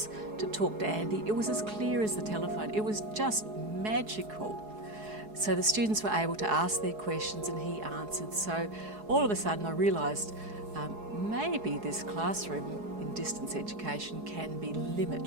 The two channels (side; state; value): left; late; 4.7 ms